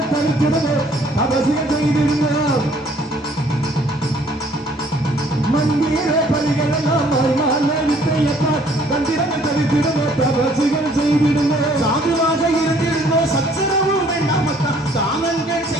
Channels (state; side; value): normal; both; correlation 0.60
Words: தடுக்கிறது அவசியம் செய்திருங்க மந்திர பலிகள் எல்லாம் வித்தையப்பா தந்திரங்கள் தடுக்கிறது அவசியம் செய்திருங்க சாதுவாக இருந்திருந்தோ சச்சரவு வேண்டாமக்கா தானங்கள்